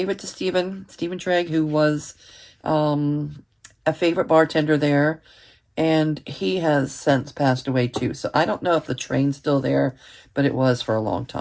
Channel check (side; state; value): both; identical; correlation 1.00